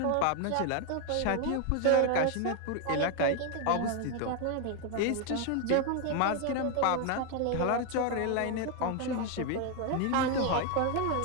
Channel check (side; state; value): both; different; correlation 0.01